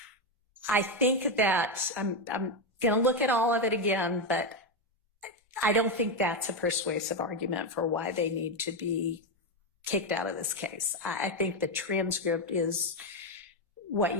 I think that I'm going to look at all of it again, but I don't think that's a persuasive argument for why they need to be kicked out of this case. I think the transcript is what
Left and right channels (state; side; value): normal; both; correlation 0.08